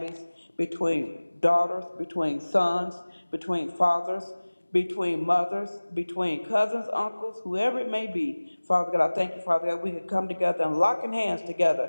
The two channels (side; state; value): both; inverted; correlation -1.00